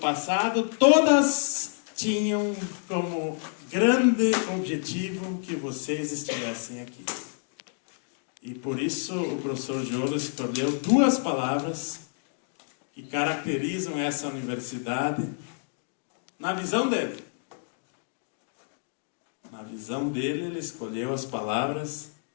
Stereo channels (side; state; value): right; silent; 59 dB below the other